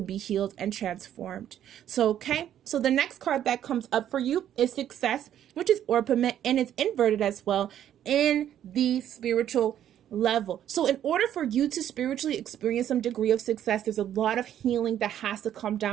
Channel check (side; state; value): left; quieter; 10.7 dB